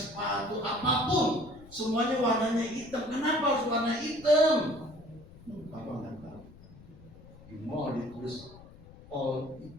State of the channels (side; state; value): left; noise; rumble, 21 dB below the sound